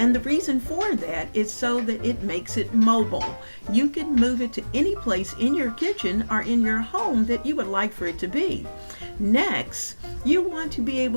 the reason for that is so that it makes it mobile. You can move it to any place in your kitchen or in your home that you would like for it to be. Next, you want to be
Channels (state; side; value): inverted; both; correlation -1.00